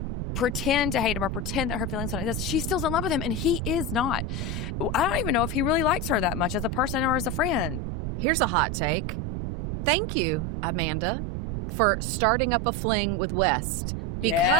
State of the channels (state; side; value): noise; right; rumble, 3 dB below the sound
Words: pretend to hate him or pretend that her feelings don't exist. She still's in love with him and he is not. I don't even know if he really likes her that much as a person or as a friend. Here's a hot take. Thank you, Amanda, for starting up a fling with West,